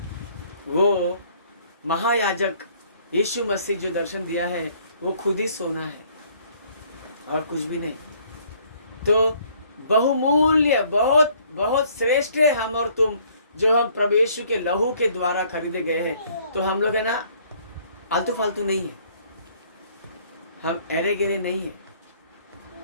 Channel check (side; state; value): both; inverted; correlation -0.61